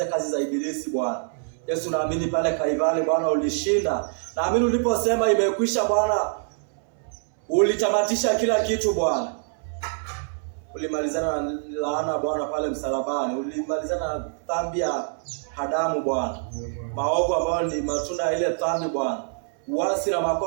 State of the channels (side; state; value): left; silent; 62 dB below the other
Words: kazi za ibilisi Bwana. Yesu, naamini pale Kalvari Bwana ulishinda. Naamini uliposema imekwisha Bwana, ulitamatisha kila kitu Bwana. Ulimalizana na laana Bwana pale msalabani. Ulimalizana na dhambi ya Adamu Bwana, maovu ambayo ni matunda ya ile dhambi Bwana, uasi na